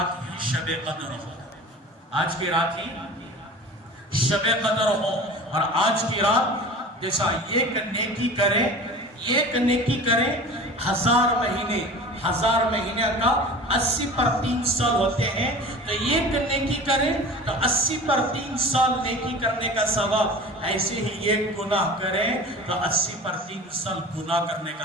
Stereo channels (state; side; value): normal; both; correlation 0.38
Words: ہی شب قدر ہو آج کی رات ہی شب قدر ہو اور آج کی رات جیسا ایک نیکی کرے 1000 مہینے کا 80 پر 3 سال ہوتے ہیں تو ایک نیکی کرے تو 80 پر 3 سال نیکی کرنے کا ثواب ایسے ہی ایک گناہ کرے تو 80 پر 3 سال گناہ کرنے